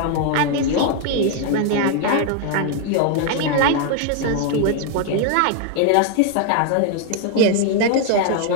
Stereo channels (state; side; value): different; both; correlation 0.00